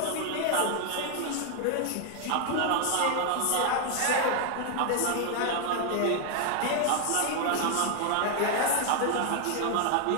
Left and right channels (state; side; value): different; both; correlation 0.00